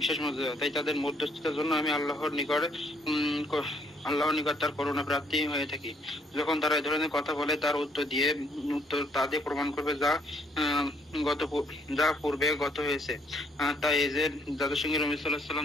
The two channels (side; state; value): both; normal; correlation 0.66